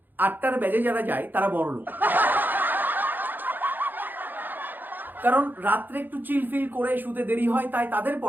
8টার ব্যাচে যারা যায় তারা বড় লোক, কারণ রাত্রে একটু চিলফিল করে শুতে দেরি হয়, তাই তাদের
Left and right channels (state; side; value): late; left; 0.089 ms